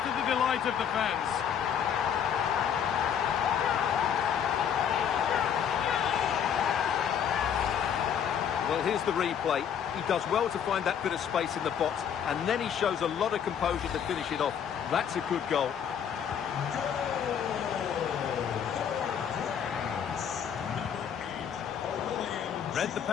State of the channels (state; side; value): quieter; right; 8.3 dB